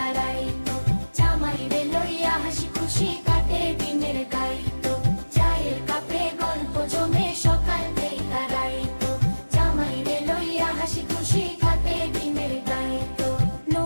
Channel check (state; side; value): inverted; both; correlation -1.00